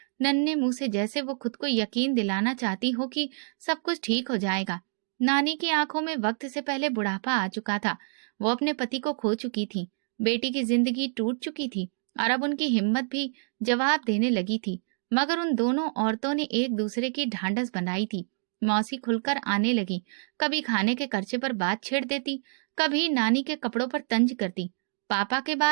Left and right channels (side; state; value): left; silent; digital silence